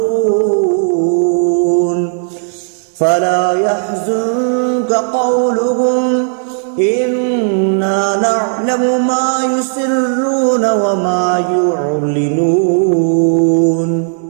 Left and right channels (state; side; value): silent; left; digital silence